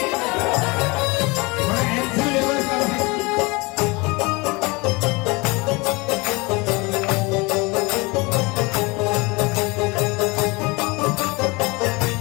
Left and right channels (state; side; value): quieter; right; 26.1 dB